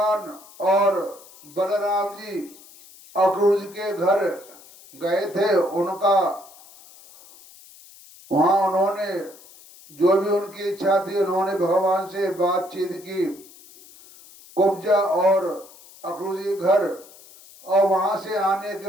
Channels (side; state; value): left; noise; hiss, 22 dB below the sound